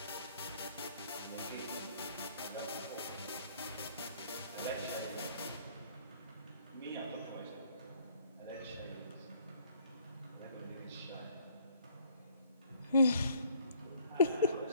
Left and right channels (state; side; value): inverted; both; correlation -0.61